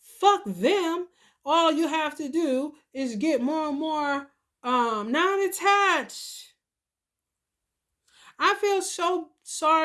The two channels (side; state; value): both; identical; correlation 1.00